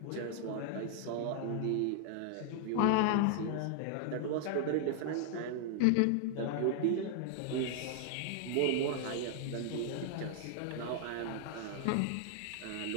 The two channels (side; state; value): both; different; correlation 0.00